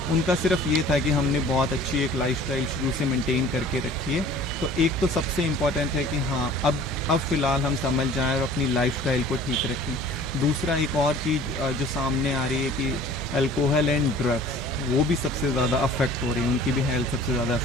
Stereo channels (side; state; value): both; normal; correlation 0.48